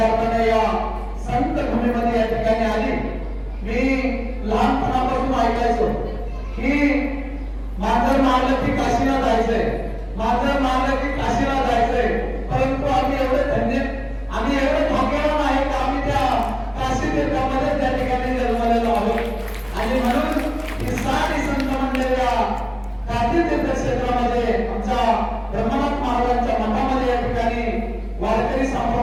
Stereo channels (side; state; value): both; identical; correlation 1.00